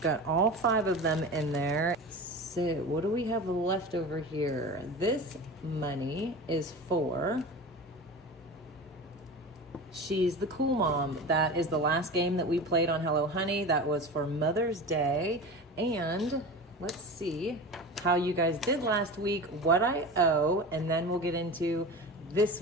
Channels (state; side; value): normal; both; correlation 0.31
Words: all 5 of them in there. So what do we have left over here? This money is for She's the Cool Mom. That is the last game that we played on Hello Honey. That was for Mother's Day. And let's see how you guys did last week, what I owe, and then we'll get into this